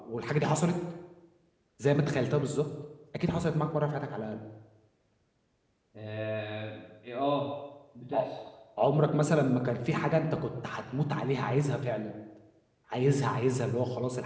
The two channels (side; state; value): both; identical; correlation 1.00